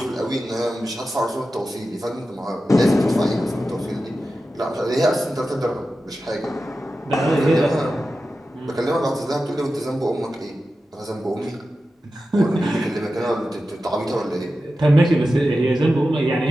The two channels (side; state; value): both; normal; correlation 0.92